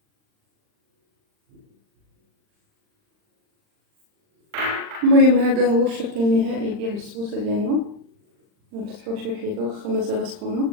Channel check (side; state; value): left; late; 39 ms